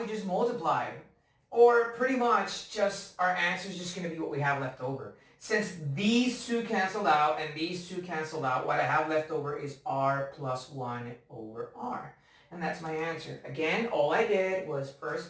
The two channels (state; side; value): identical; both; correlation 1.00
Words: just multiply, or pretty much just our answer is just going to be what we have left over. Since these two canceled out and these two canceled out, what I have left over is r plus 1 over r. And that's my answer. Again, all I did was first